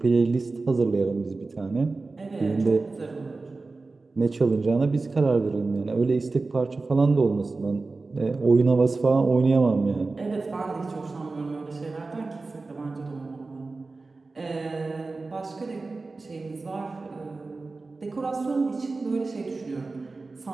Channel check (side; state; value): left; quieter; 3.7 dB